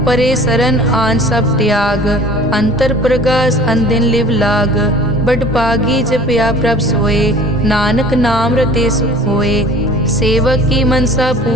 परे सरन आन सब त्याग। अंतर प्रगास अनदिन लिव लाग, बड़ पागी जपया प्रभ सोए। नानक नाम रते सुख होए, सेवक की मनसा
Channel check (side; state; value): left; noise; rumble, 21 dB below the sound